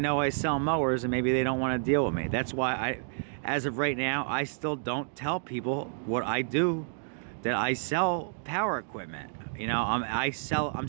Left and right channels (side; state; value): left; silent; digital silence